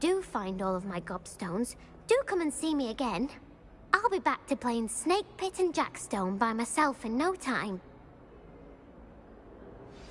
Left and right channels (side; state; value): both; identical; correlation 1.00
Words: find all of my gobstones, do come and see me again. I'll be back to playing Snake Pit and Jackstone by myself in no time.